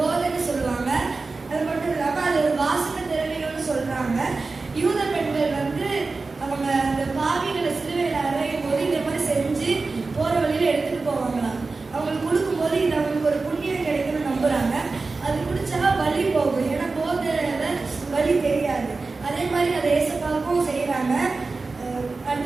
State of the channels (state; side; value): quieter; left; 3.9 dB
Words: சொல்லுவாங்க. அது மட்டும் இல்லாம அது ஒரு வாசனை திரவியம்னு சொல்றாங்க. யூத பெண்கள் அவங்க அந்த பாவிகளை சிலுவையில் அறையும் போது இந்த மாதிரி செஞ்சு போற வழியில எடுத்துட்டு போவாங்களாம். அவங்களுக்கு கொடுக்கும் போது இது அவங்களுக்கு ஒரு புண்ணியம் கிடைக்கும்னு நம்புறாங்க. அது குடிச்சா வலி போகும். ஏன்னா போதையில வலி தெரியாது. அதே மாதிரி அதை ஏசப்பாவுக்கும் செய்யறாங்க.